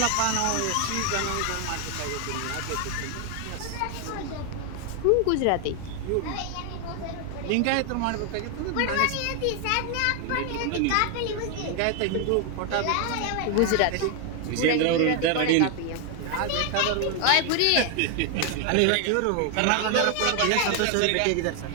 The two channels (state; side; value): different; both; correlation 0.01